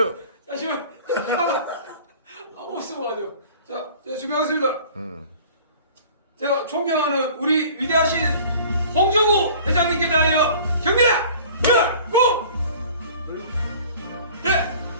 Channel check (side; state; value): both; inverted; correlation -0.46